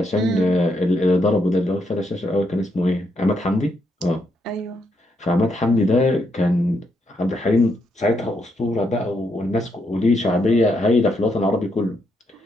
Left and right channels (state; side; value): normal; both; correlation 0.78